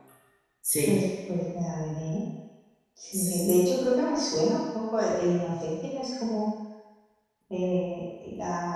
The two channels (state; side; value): identical; both; correlation 1.00